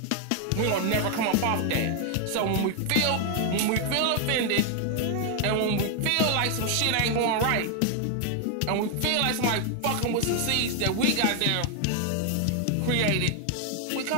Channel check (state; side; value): different; both; correlation 0.00